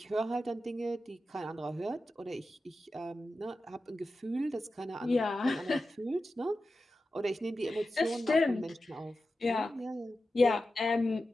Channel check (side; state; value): both; normal; correlation 0.92